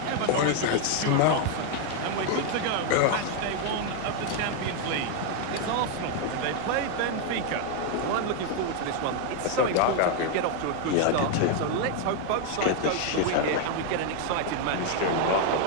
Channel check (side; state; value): both; different; correlation 0.00